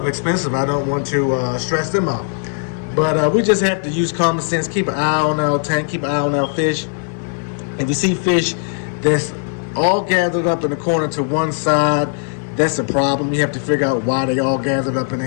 expensive. I don't want to stress them out. But we just have to use common sense, keep an eye on our tank, keep an eye on our fish. If you see fish that's all gathered up in the corner to one side, that's a problem. You have to figure out why they all gathered up in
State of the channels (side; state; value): right; silent; digital silence